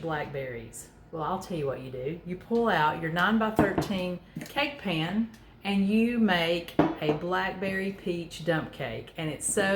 Well, I'll tell you what you do. You pull out your 9 by 13 cake pan and you make a blackberry peach dump cake. And it's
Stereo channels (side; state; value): both; identical; correlation 1.00